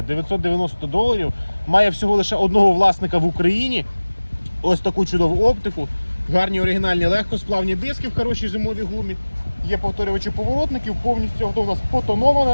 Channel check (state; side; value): inverted; both; correlation -1.00